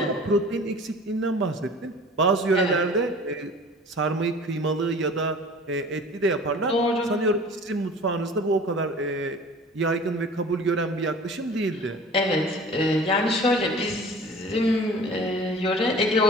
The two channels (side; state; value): both; normal; correlation 0.43